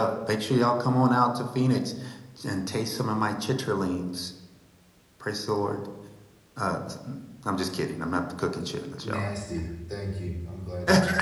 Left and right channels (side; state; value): both; identical; correlation 1.00